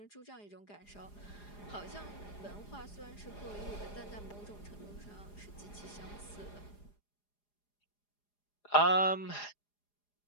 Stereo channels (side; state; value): right; late; 4.9 ms